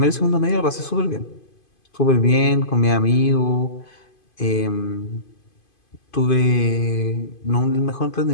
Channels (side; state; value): right; late; 2.5 ms